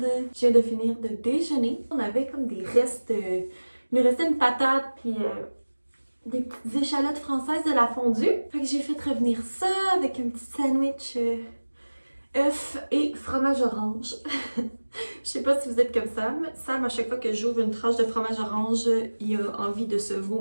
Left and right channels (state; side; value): inverted; both; correlation -1.00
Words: Je viens de finir de déjeuner. On avait comme des restes, il nous restait une patate puis des petites échalotes françaises de la fondue. Fait que j'ai fait revenir ça avec un petit sandwich œuf et fromage orange. Je sais pas si vous êtes comme Sam. Sam, à chaque fois que j'ouvre une tranche de fromage orange, il a envie de se